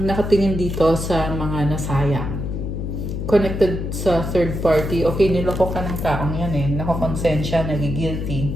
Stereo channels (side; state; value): left; noise; hum, 4 dB below the sound